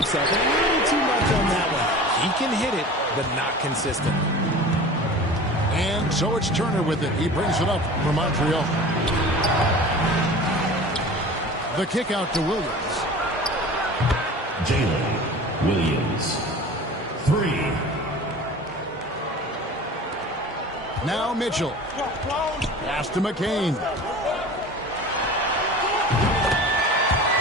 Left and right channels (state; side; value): normal; both; correlation 0.38